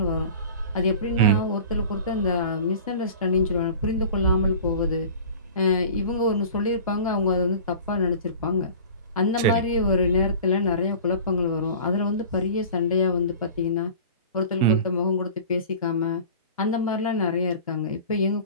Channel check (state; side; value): inverted; both; correlation -0.40